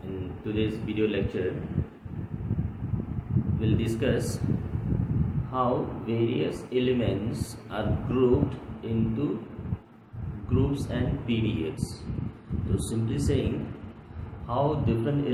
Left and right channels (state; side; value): identical; both; correlation 1.00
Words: In today's video lecture, we'll discuss how various elements are grouped into groups and periods. So simply saying how different